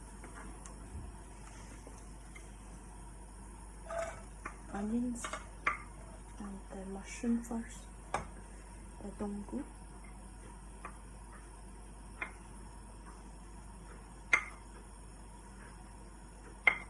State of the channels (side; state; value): both; identical; correlation 1.00